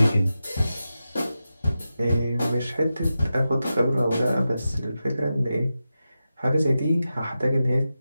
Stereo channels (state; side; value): inverted; both; correlation -0.92